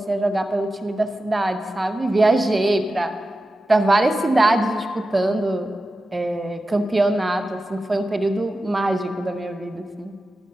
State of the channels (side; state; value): both; normal; correlation 0.92